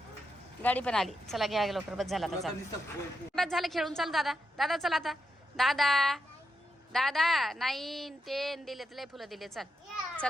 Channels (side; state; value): both; normal; correlation 0.84